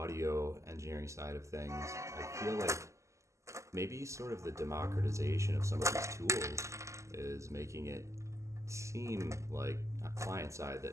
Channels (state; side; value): late; left; 0.14 ms